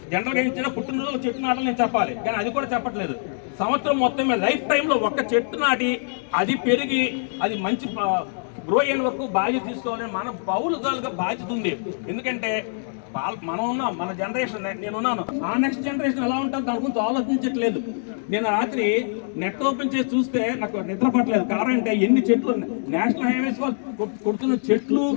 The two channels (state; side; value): silent; right; digital silence